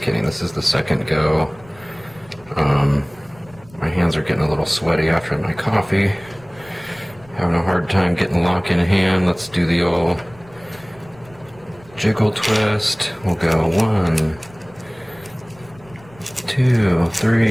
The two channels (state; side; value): noise; left; rumble, 25 dB below the sound